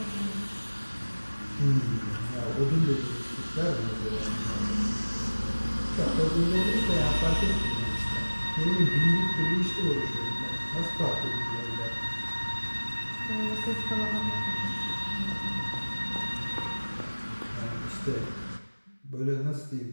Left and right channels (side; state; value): both; inverted; correlation -1.00